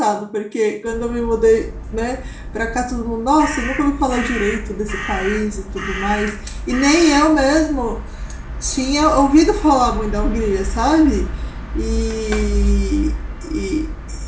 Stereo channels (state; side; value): identical; both; correlation 1.00